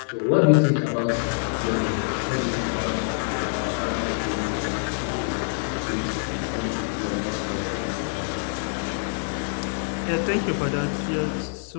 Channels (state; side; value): silent; right; digital silence